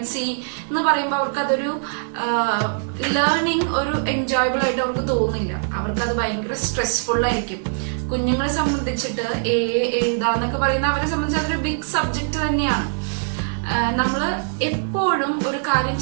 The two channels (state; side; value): silent; left; 64 dB below the other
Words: C എന്ന് പറയുമ്പോൾ അവർക്ക് അതൊരു ലേണിംഗ് ഒരു എൻജോയബിൾ ആയിട്ട് അവർക്ക് തോന്നില്ല. അവർക്കത് ഭയങ്കര സ്ട്രെസ്ഫുൾ ആയിരിക്കും. കുഞ്ഞുങ്ങളെ സംബന്ധിച്ചിട്ട് A എഴുതാന്നൊക്കെ പറയുന്ന അവരെ സംബന്ധിച്ച് അതൊരു ബിഗ് സബ്ജക്ട് തന്നെയാണ്. നമ്മള് എപ്പോഴും ഒരു കാര്യം